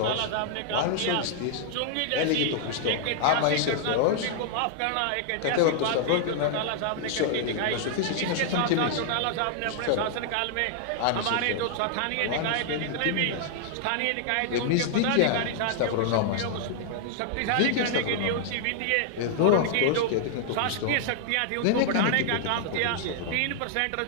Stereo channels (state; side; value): different; both; correlation -0.01